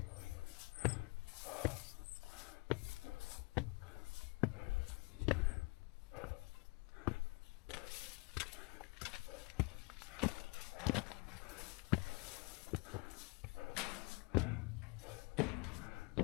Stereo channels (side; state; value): right; quieter; 27.7 dB